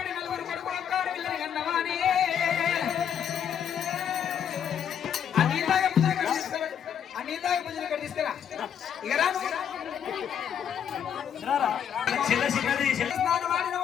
4 కొడుకులు ఒక్కారు వీళ్ళని అన్నవాని అన్నిదాకా పూజలు ఇక్కడ తీసుకురా ఇక రాను స్నానం ఆడిన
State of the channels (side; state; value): right; quieter; 8.6 dB